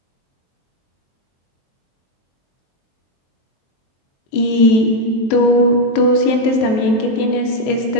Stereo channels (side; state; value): right; late; 23 ms